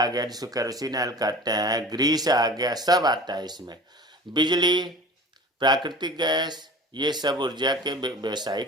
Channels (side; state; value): both; normal; correlation 0.39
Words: गया जिसको केरोसिन ऑयल कहते हैं, ग्रीस आ गया, सब आता है इसमें। बिजली, प्राकृतिक गैस, ये सब ऊर्जा के